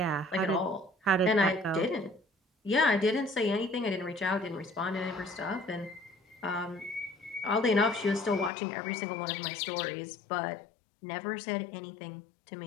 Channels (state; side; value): drops out; right; at 8.5 s